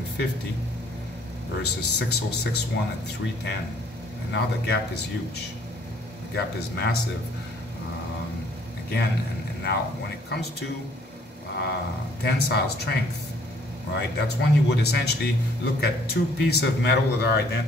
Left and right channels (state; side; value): normal; both; correlation 0.61